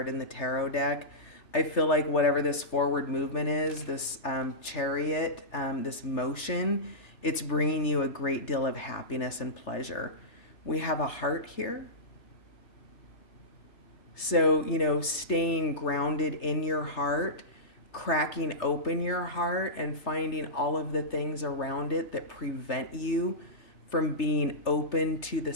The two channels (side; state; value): right; late; 3.3 ms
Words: in the tarot deck. I feel like whatever this forward movement is, this chariot, this motion, it's bringing you a great deal of happiness and pleasure. We have a heart here. So, staying grounded in your heart, cracking open your heart and finding all of the things around it that prevent you from being open to the